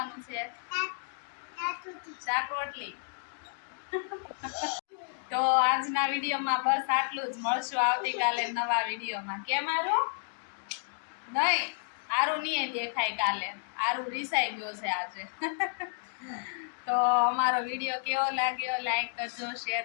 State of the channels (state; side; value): silent; right; digital silence